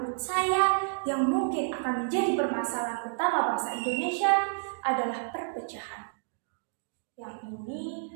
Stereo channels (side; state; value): left; silent; digital silence